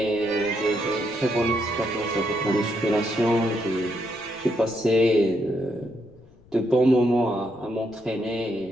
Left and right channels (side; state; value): left; noise; rumble, 27 dB below the sound